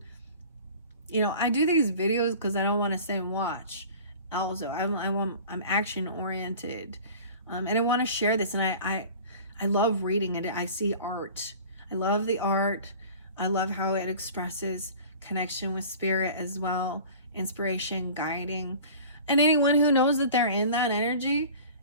I do these videos because I don't want to sit and watch. Also, I'm action oriented, and I want to share this. And I love reading it. I see art. I love the art. I love how it expresses connection with spirit as well, inspiration, guiding. And anyone who knows that they're in that energy,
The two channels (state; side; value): inverted; both; correlation -0.42